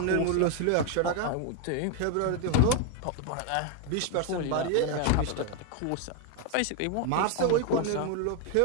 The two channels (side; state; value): both; different; correlation 0.01